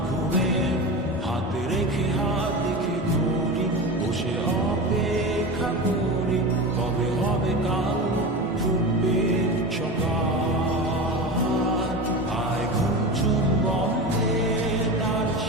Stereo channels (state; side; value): normal; both; correlation 0.26